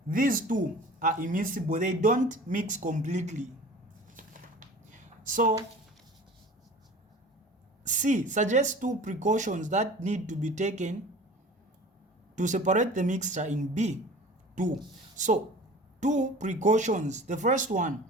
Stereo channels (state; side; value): normal; both; correlation 0.41